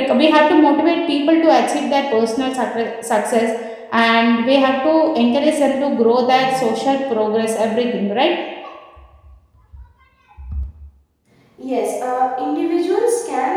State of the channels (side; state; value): both; identical; correlation 1.00